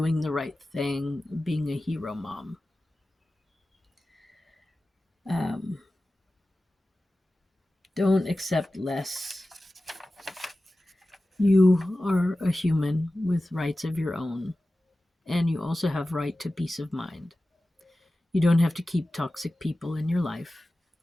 the right thing, being a hero mom. Don't accept less. You are a human with rights of your own, and you also have right to peace of mind. You don't have to keep toxic people in your life,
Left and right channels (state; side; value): normal; both; correlation 0.95